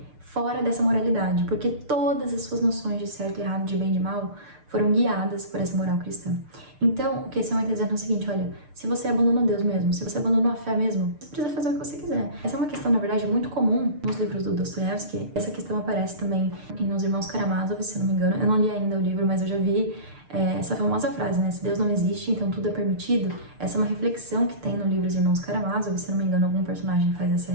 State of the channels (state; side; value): late; left; 6.7 ms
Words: fora dessa moralidade, porque todas as suas noções de certo e errado, de bem e de mal, foram guiadas por essa moral cristã. Então, o que esse homem está dizendo é o seguinte, olha, se você abandonou Deus mesmo, se você abandonou a fé mesmo, você precisa fazer o que você quiser. Essa é uma questão, na verdade, muito comum nos livros do Dostoiévski. Essa questão aparece também nos Irmãos Karamazov, se não me engano. Eu não li ainda o livro, mas eu já vi essa famosa frase, né? Se Deus não existe, então tudo é permitido. Essa é uma reflexão que tem no livro Os Irmãos Karamazov, se não me engano, algum personagem faz essa